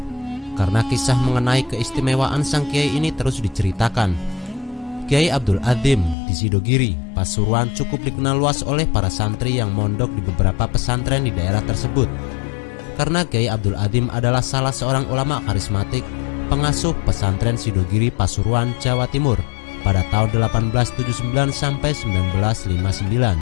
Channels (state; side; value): drops out; right; at 6.2 s